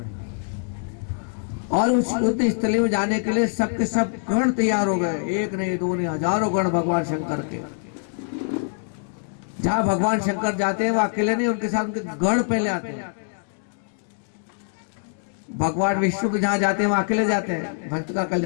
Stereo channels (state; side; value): silent; right; 62 dB below the other